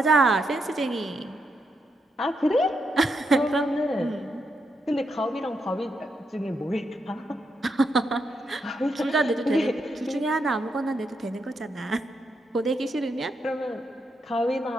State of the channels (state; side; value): normal; both; correlation 0.81